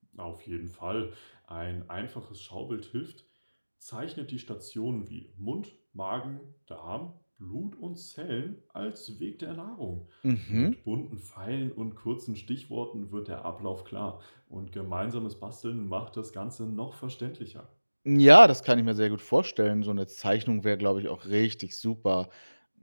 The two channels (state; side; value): inverted; both; correlation -1.00